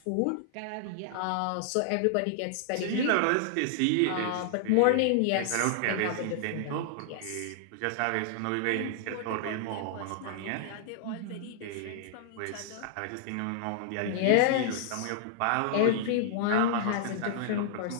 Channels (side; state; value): both; different; correlation -0.01